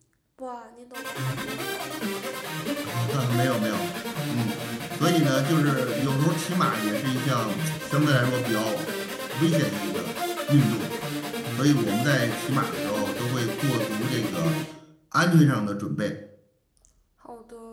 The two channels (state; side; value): identical; both; correlation 1.00